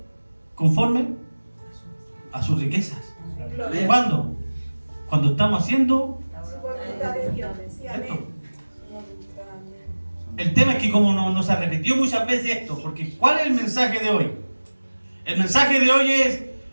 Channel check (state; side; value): inverted; both; correlation -1.00